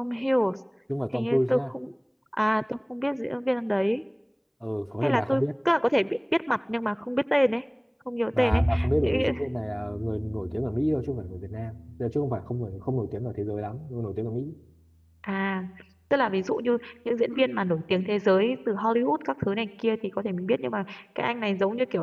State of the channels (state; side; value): identical; both; correlation 1.00